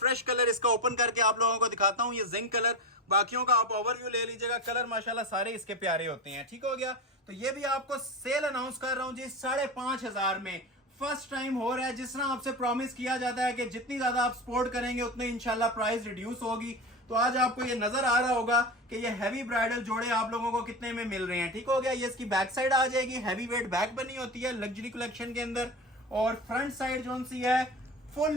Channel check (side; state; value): both; normal; correlation 0.24